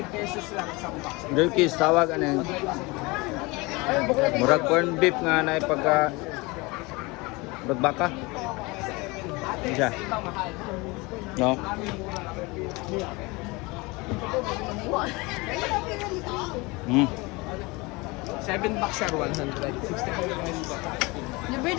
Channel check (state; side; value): quieter; right; 24.8 dB